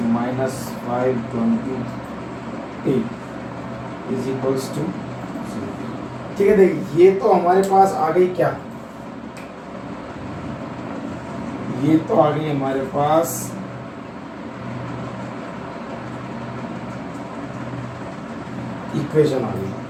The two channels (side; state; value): both; identical; correlation 1.00